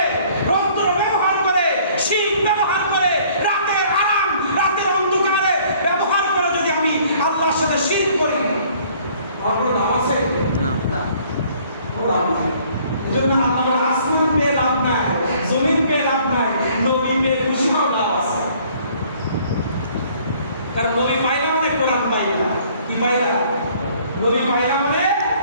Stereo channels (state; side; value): inverted; both; correlation -0.58